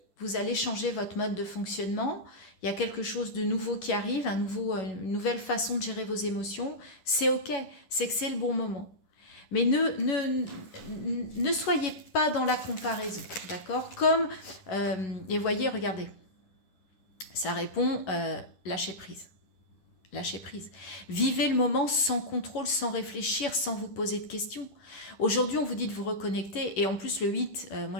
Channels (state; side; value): late; right; 11 ms